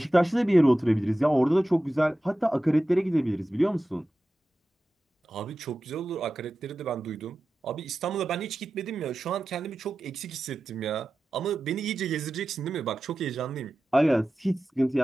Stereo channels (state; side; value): normal; both; correlation 0.93